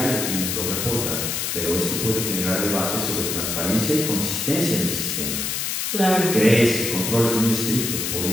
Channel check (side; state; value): left; noise; hiss, 1 dB below the sound